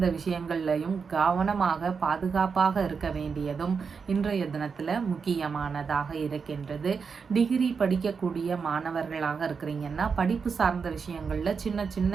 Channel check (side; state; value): left; quieter; 5.6 dB